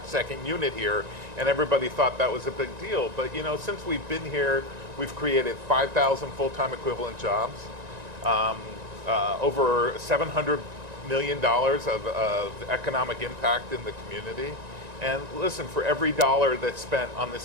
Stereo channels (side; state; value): left; late; 1.9 ms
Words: second unit here, and everybody thought that was a big deal. But, since we've been here, we've created 5,000 full-time equivalent jobs, over $700 million of economic impact in the community. And listen, for every dollar that's spent on